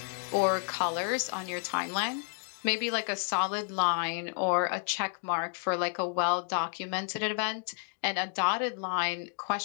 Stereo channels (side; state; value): right; silent; 57 dB below the other